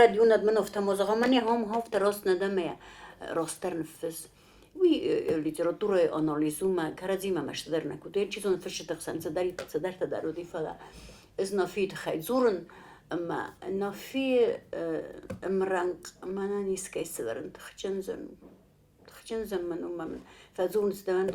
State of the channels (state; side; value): identical; both; correlation 1.00